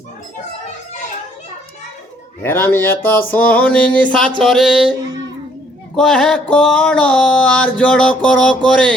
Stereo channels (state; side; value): normal; both; correlation 0.64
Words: হেরামি এত শুনি নিশাচরে কহে কড় আর জড় কর করে